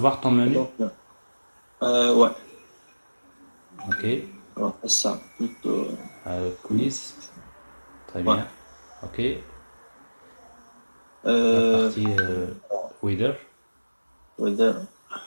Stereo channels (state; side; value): inverted; both; correlation -1.00